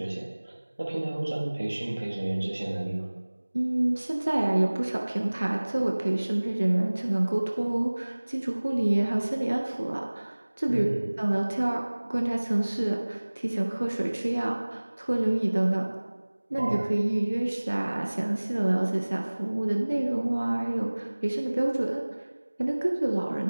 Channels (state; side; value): inverted; both; correlation -1.00